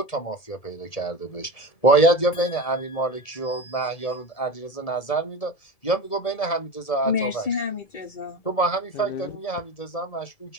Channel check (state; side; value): late; right; 1.7 ms